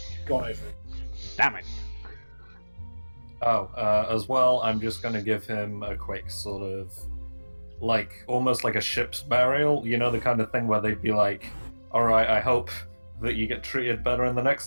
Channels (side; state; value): both; inverted; correlation -1.00